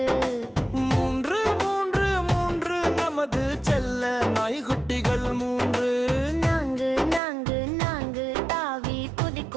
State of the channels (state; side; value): drops out; left; at 7.2 s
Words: 3 3 3 நமது செல்ல நாய்குட்டிகள் 3 4 4 4 தாவி